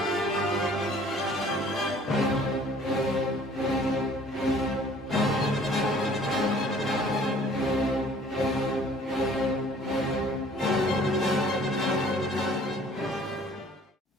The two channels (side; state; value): both; normal; correlation 0.54